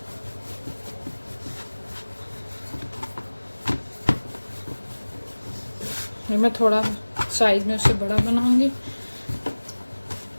मैं थोड़ा साइज में उससे बड़ा बनाऊंगी,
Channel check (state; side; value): inverted; both; correlation -1.00